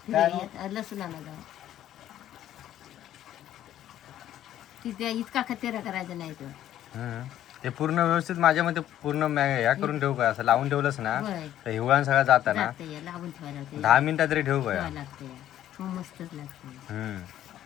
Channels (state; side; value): quieter; right; 12.0 dB